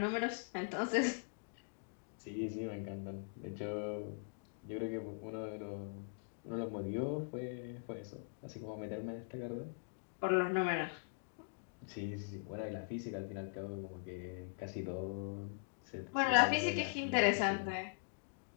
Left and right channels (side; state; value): right; silent; digital silence